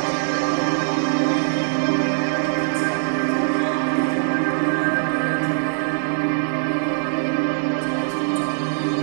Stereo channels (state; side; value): silent; left; 56 dB below the other